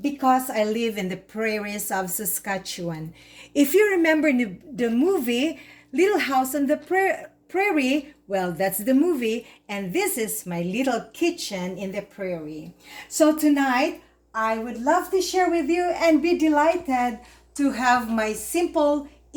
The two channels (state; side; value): identical; both; correlation 1.00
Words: I live in the prairies of Saskatchewan. If you remember the movie Little House on the Prairie, well, that's the movie, and this is my little kitchen in the prairie. So tonight, I would love to share with you and be delighted to have my simple,